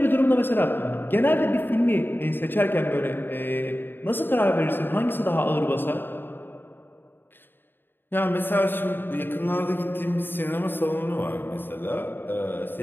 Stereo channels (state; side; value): late; right; 0.097 ms